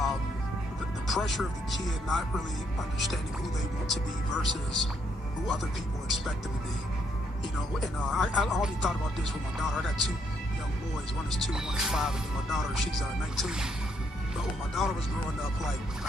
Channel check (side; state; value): both; normal; correlation 0.73